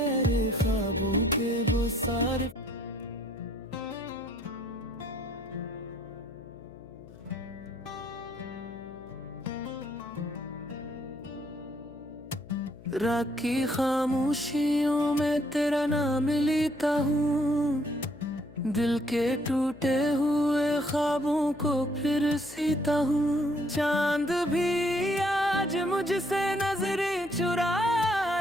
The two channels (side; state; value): left; noise; hum, 19 dB below the sound